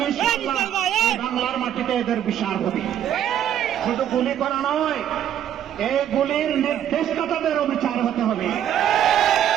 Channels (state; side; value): quieter; left; 10.4 dB